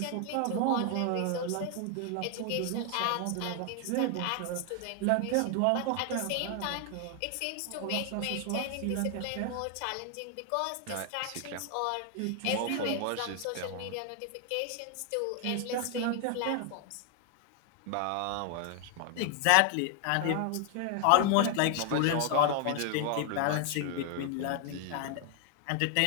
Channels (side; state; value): both; different; correlation 0.00